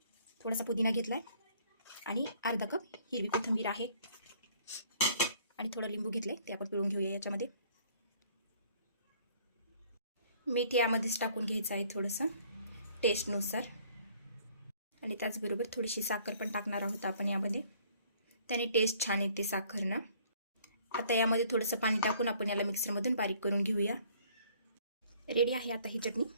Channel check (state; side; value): inverted; both; correlation -0.59